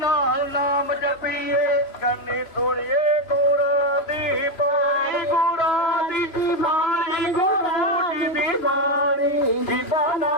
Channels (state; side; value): late; right; 3.0 ms